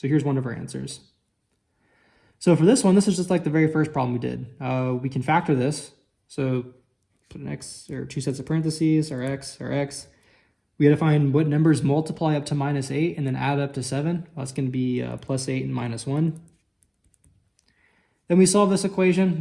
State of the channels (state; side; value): identical; both; correlation 1.00